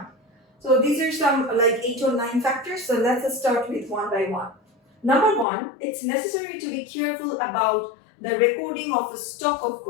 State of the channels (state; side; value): drops out; right; at 5.5 s